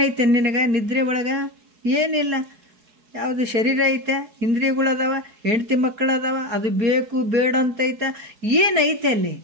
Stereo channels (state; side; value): late; left; 4.7 ms